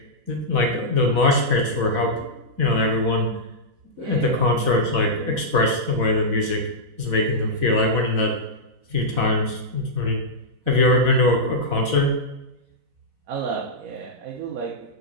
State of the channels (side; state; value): left; late; 4.0 ms